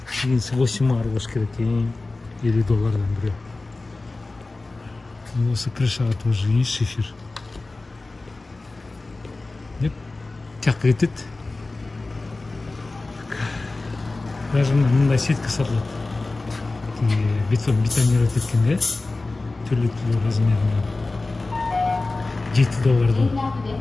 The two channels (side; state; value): right; quieter; 3.3 dB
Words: 8 ар болуш керек. 50 доллардан бирөө. Осы крышага тоже есть шифер. Деп тияққа кетет. Даже мындай сетка сатылат. Бетонировать еткен, да? Түрлі размерінен. 7 доллардан.